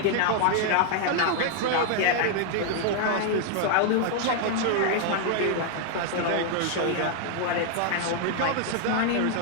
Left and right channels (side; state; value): both; different; correlation 0.00